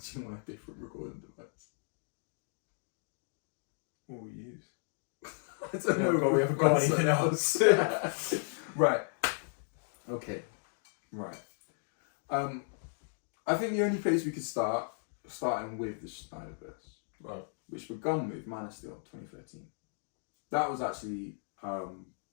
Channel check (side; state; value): right; silent; digital silence